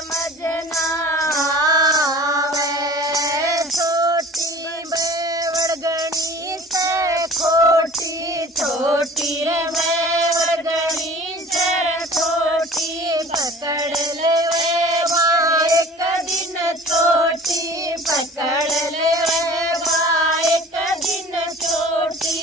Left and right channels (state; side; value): normal; both; correlation 0.45